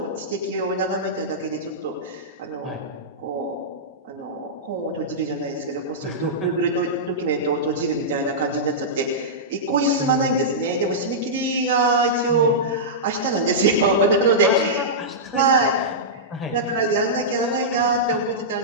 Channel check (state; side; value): normal; both; correlation -0.14